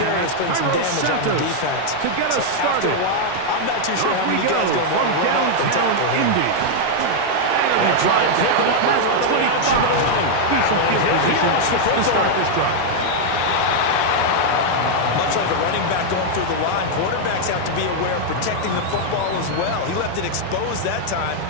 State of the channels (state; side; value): different; both; correlation -0.01